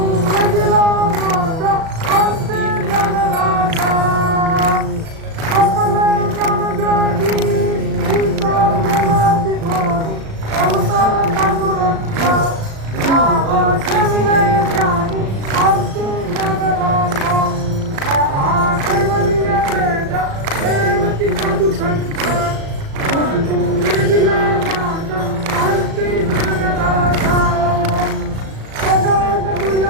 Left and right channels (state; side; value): late; left; 36 ms